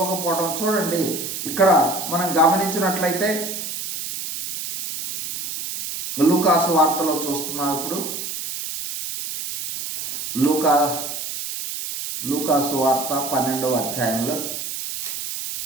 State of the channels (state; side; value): noise; right; hiss, 6 dB below the sound